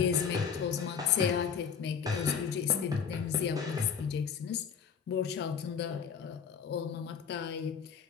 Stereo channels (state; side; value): quieter; right; 6.9 dB